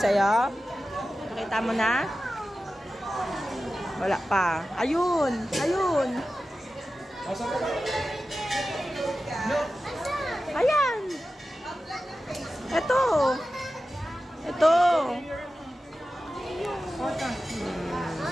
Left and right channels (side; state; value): both; normal; correlation 0.94